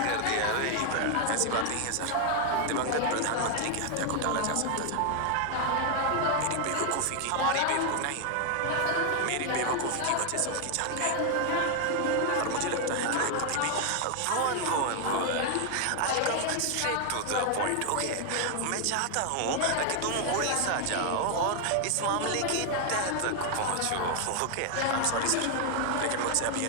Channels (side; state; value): both; different; correlation 0.00